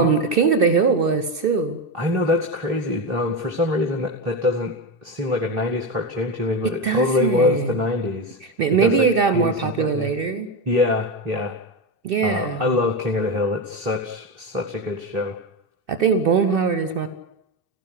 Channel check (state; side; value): late; left; 2.7 ms